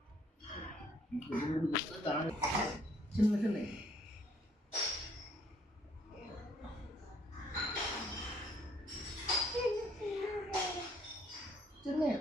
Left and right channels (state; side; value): normal; both; correlation 0.65